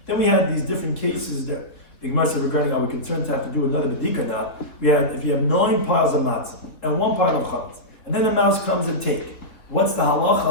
Then we had these different cases that the Gemara said regarding are we concerned to have to do another bedika now. We had if you have 9 piles of matzah and 1 pile of chametz, and then the mouse comes and take. What's the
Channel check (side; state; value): right; late; 3.4 ms